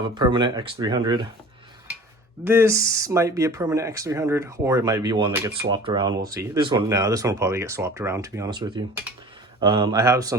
a permanent X300. This might be a permanent X300, or it might be one that gets swapped around. We'll see. This one will probably get swapped around, to be honest with you. I have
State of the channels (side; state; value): both; normal; correlation 0.42